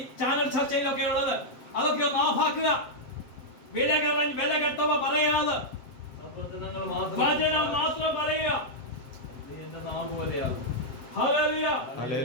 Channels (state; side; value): late; right; 7.5 ms